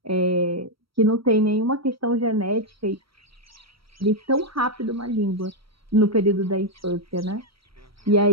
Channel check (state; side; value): late; left; 0.75 ms